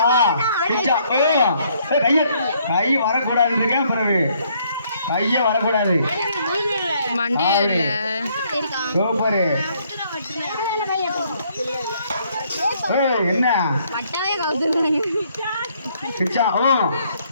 பிச்சா. கை வரக்கூடாது இருக்கேன். பிறகு கையே வரக்கூடாது. மண்டே இல்ல. சூப்பர். என்ன பிச்சா?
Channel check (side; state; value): both; inverted; correlation -0.68